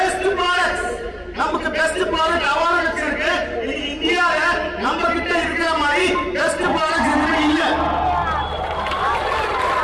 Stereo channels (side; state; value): both; identical; correlation 1.00